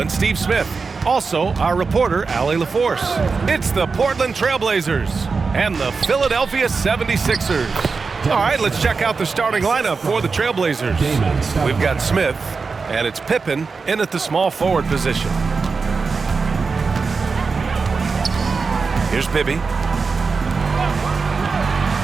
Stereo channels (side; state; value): left; quieter; 4.7 dB